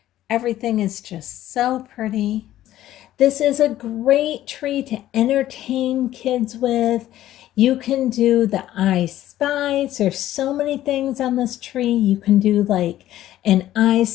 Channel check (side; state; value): right; quieter; 13.5 dB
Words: Everything is just so pretty. This is a great tree to entertain kids with. You can do the I Spies. There's so many things on this tree. You can do like an I